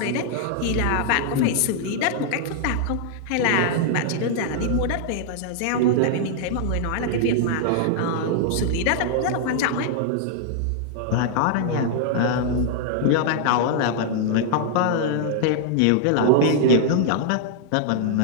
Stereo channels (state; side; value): different; both; correlation -0.01